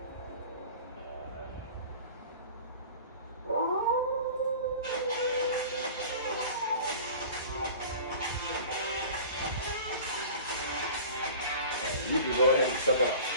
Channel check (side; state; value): both; inverted; correlation -0.41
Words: You can go ahead and set that up.